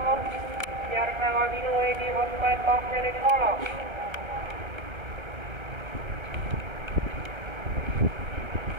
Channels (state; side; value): late; left; 1.3 ms